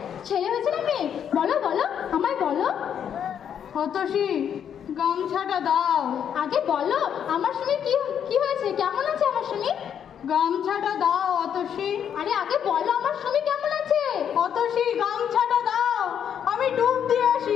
ছেলে হয়েছে না মেয়ে? বলো বলো, আমায় বলো। অতসী, গামছাটা দাও। আগে বলো আমার সুমি কি হয়েছে, কেমন আছে আমার সুমি? গামছাটা দাও অতসী। আরে আগে বলো আমার সুমি কেমন আছে? অতসী, গামছাটা দাও, আমি ডুব দিয়ে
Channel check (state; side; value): quieter; right; 8.6 dB